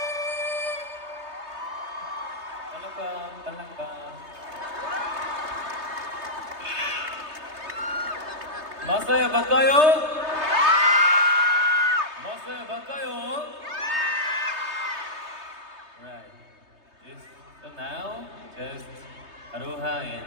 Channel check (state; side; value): late; left; 3.2 ms